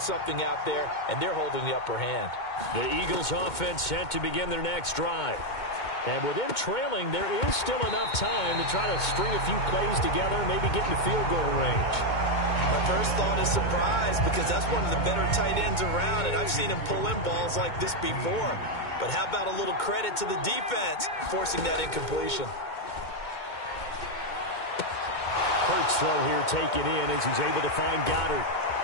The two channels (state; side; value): late; right; 2.2 ms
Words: out there, and they're holding the upper hand. The Eagles offense set to begin their next drive. And with them trailing, there is still enough time to try to string a few plays together, maybe get into field goal range. My first thought is surprise because that's one of the better tight ends around, and I've seen him pull in balls like this before. But how about a little credit to the defense forcing that incompletion? Hurts throw here taken in as he's able to find Goddard.